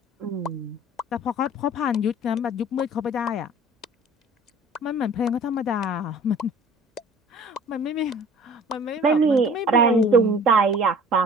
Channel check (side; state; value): both; normal; correlation 0.48